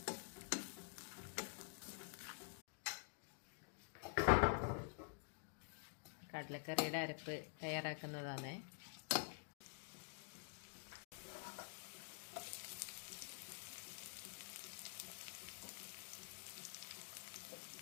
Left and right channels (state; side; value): silent; right; digital silence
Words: കടലക്കറിയുടെ അരപ്പ് തയ്യാറാക്കുന്നതാണ്.